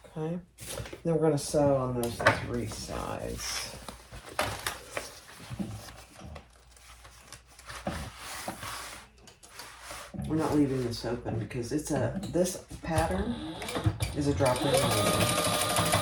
Okay, then we're going to sew on those 3 sides. We're not leaving this open because this pattern is a drop-in lining.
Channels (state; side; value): identical; both; correlation 1.00